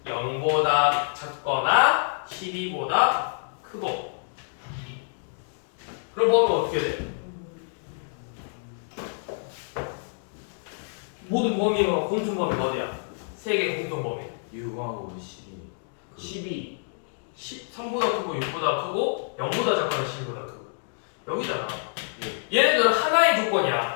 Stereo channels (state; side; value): silent; right; digital silence